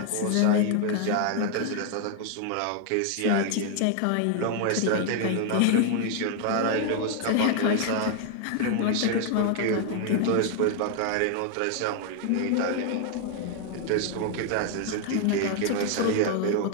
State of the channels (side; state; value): both; different; correlation 0.00